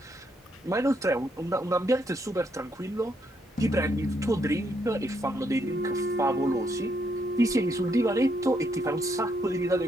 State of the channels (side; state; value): both; normal; correlation 0.75